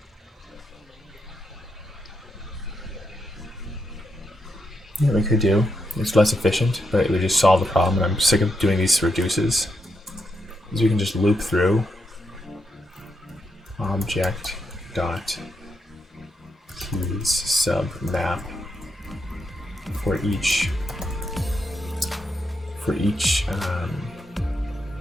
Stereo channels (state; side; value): normal; both; correlation 0.82